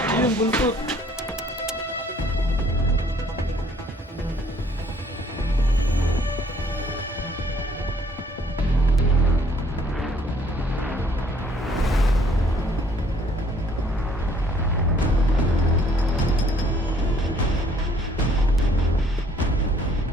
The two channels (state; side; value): normal; both; correlation 0.62